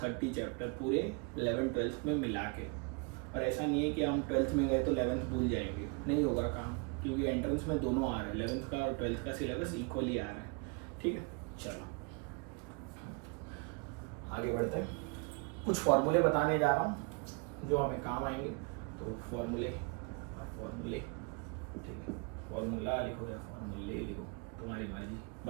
चैप्टर पूरे 11th 12th में मिला के। और ऐसा नहीं है कि हम 12th में गए तो 11th भूल जाएंगे, नहीं होगा काम, क्योंकि एंट्रेंस में दोनों आ रहा है, 11th का और 12th का सिलेबस इक्वली आ रहा है, ठीक है। चलो आगे बढ़ते हैं, कुछ फॉर्मूले बताने जा रहा हूँ जो हमें काम आएंगे। तो फॉर्मूले, ठीक है, फॉर्मूला लिखो या फॉर्मूले लिखो, तुम्हारी मर्जी,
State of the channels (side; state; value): left; quieter; 32.5 dB